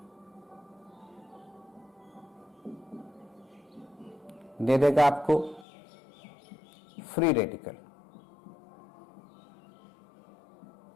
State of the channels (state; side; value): drops out; right; at 5.7 s